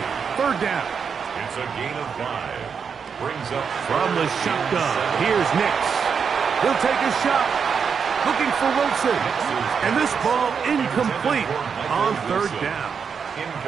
3rd down. It's a gain of 5. Brings up From the shotgun, here's Nix. He'll take a shot. Looking for Wilson. And this ball incomplete on 3rd down.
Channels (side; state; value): left; quieter; 6.4 dB